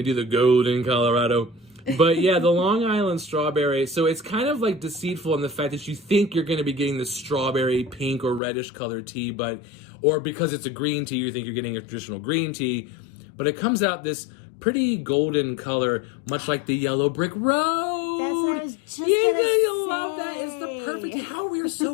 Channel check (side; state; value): right; drops out; at 8.4 s